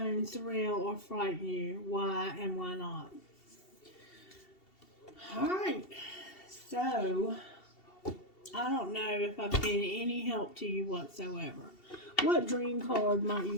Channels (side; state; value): right; late; 2.7 ms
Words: thrill or frighten you? Why and why not? All right. So, I don't know if I've been any help to you whatsoever. What dream card might you